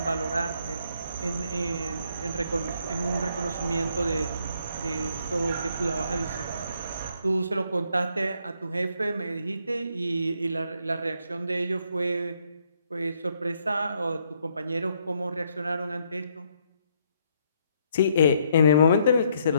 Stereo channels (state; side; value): inverted; both; correlation -0.71